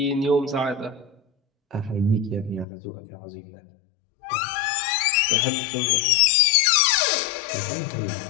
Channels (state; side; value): drops out; right; at 2.7 s